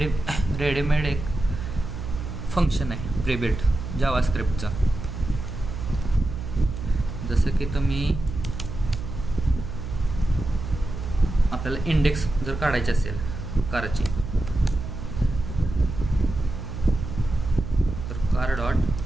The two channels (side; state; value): right; noise; hum, 7 dB below the sound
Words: रेडीमेड एक फंक्शन आहे प्रीबिल्ट जावास्क्रिप्टचं. जसं की तुम्ही आपल्याला इंडेक्स जर काढायची असेल कारची तर car dot